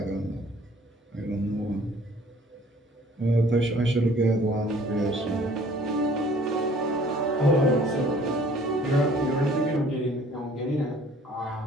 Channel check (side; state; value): both; normal; correlation 0.54